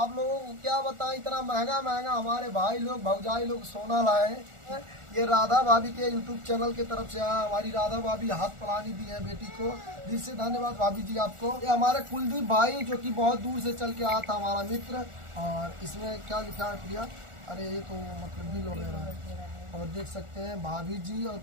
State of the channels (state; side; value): late; left; 1.4 ms